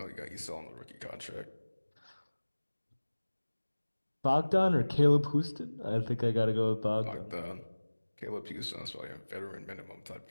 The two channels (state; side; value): inverted; both; correlation -1.00